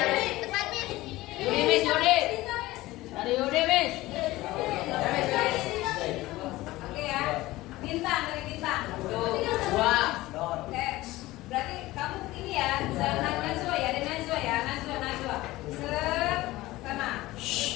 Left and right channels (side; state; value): right; quieter; 18.2 dB